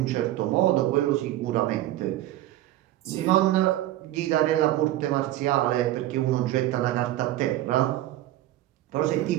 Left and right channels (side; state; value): left; quieter; 14.7 dB